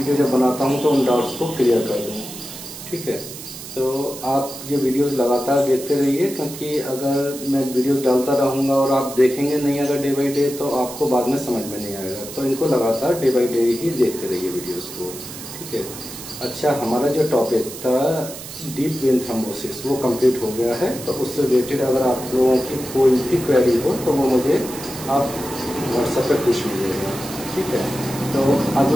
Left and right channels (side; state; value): right; noise; hiss, 12 dB below the sound